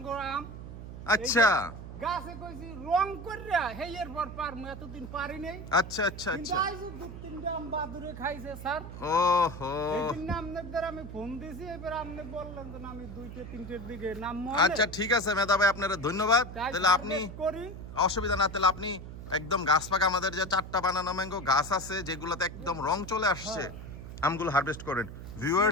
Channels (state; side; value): noise; right; hum, 11 dB below the sound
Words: আম। আচ্ছা গাছে কইছি রং কইরা হেয়ের পর পারমু, এতদিন পারি নাই। আচ্ছা আচ্ছা আচ্ছা। কিন্তু দু তিনটা আম বাদুরে খাইছে স্যার। ওহো, এইদিন আপনাদের আমি ফোন দিছি, এবার আপনি বললেন যে আমি 2টা 3টের দিকে নামবো। আচ্ছা ঠিক আছে মেধা ভাই, আপনার ধন্যবাদ। তাহলে আপনি করি অসুবিধা না, তাহলে আপনি একদম গাছ পাকা আমাদের যে 4টা বানানা ম্যাঙ্গো গাছ আছে যেগুলোতে একদম রং চলে আসছে, আমগুলো হারভেস্ট করেন।